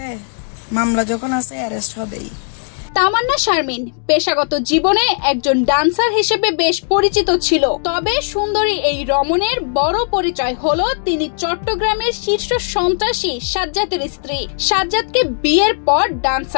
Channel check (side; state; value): right; silent; digital silence